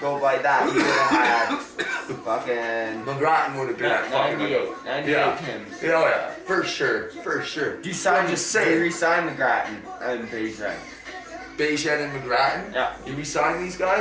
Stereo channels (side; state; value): both; identical; correlation 1.00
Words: by that. He would have had fucking... McGrattan would have been at fucking... 98 Tims. Yeah, for sure. You signed, just saying. You re-signed McGrattan and Beijing. Beijing and McGrattan? Yeah. You re-signing these